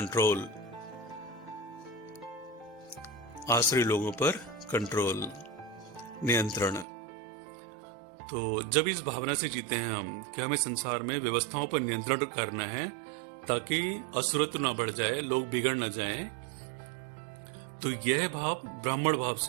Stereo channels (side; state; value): left; drops out; at 6.9 s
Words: आश्रय लोगों पर कंट्रोल, नियंत्रण। तो जब इस भावना से जीते हैं हम कि हमें संसार में व्यवस्थाओं पर नियंत्रण करना है ताकि असुरत्व ना बढ़ जाए, लोग बिगड़ ना जाएं, तो यह भाव ब्राह्मण भाव